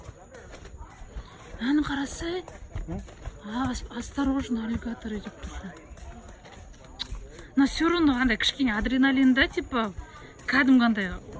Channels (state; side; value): identical; both; correlation 1.00